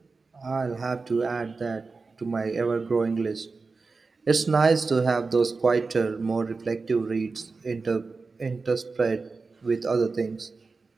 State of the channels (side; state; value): left; quieter; 4.2 dB